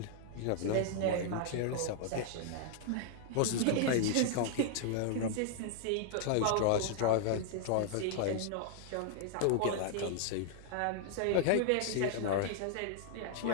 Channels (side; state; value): both; different; correlation 0.00